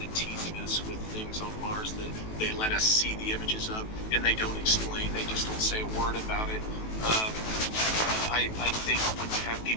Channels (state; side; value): late; right; 18 ms